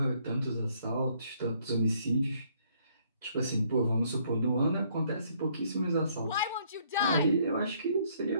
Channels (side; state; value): both; inverted; correlation -0.66